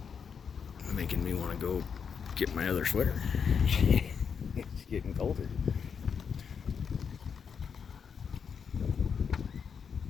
Making me want to go get my other sweater. It's getting colder.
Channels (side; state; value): right; quieter; 6.6 dB